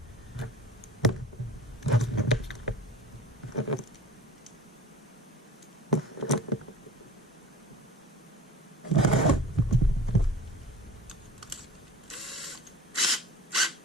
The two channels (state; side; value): normal; both; correlation 0.40